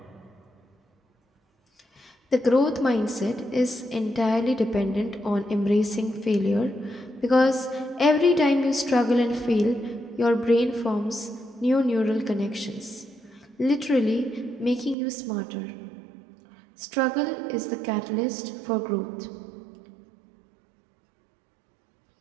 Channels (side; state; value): left; drops out; at 15.0 s